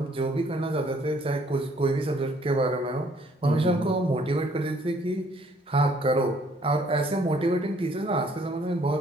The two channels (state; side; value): normal; both; correlation 0.63